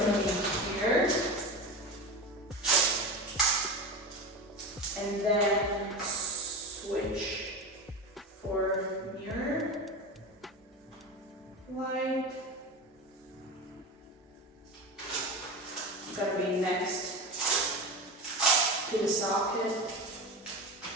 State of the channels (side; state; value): both; normal; correlation 0.25